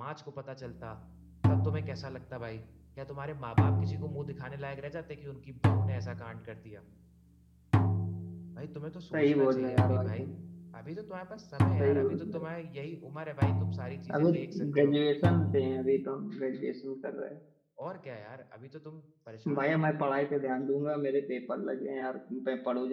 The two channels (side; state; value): both; identical; correlation 1.00